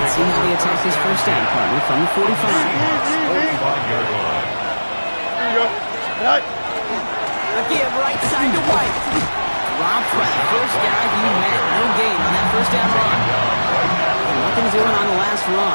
Let's see how he attacks his first down partner from the 45. Here you go. Right. A give right side to White. Robbed by the first guy he met. No gain on that first down run. And nothing doing on the last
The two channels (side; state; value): both; inverted; correlation -1.00